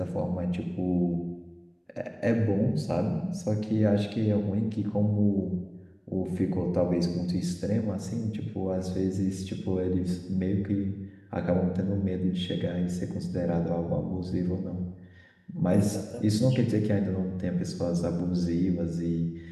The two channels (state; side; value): identical; both; correlation 1.00